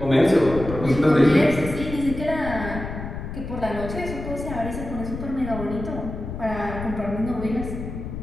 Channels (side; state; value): left; noise; rumble, 8 dB below the sound